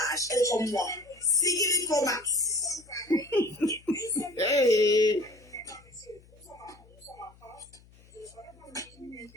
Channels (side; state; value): left; noise; hum, 26 dB below the sound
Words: elle est comme moi. Sigil Pro Max. Hey.